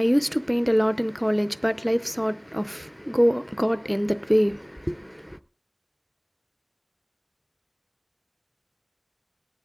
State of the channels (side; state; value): both; identical; correlation 1.00